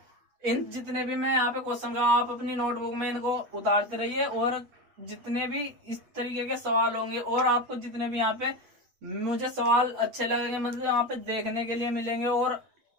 इन जितने भी मैं यहाँ पे क्वेश्चन का आप अपनी नोटबुक में इनको उतारते रहिए, और जितने भी इस तरीके के सवाल होंगे और आपको जितने भी यहाँ पे मुझे सवाल अच्छे लगेंगे, मतलब यहाँ पे देखने के लिए मिलेंगे और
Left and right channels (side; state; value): left; late; 8.3 ms